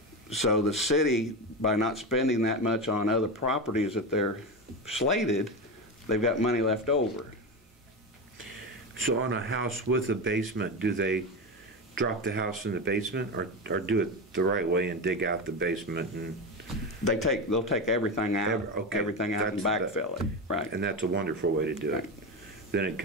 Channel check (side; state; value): both; normal; correlation 0.18